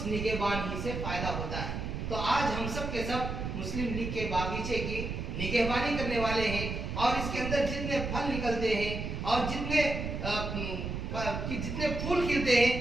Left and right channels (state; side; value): noise; right; rumble, 4 dB below the sound